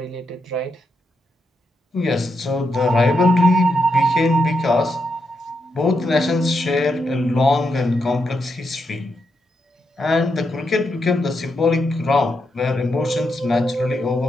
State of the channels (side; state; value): both; normal; correlation 0.83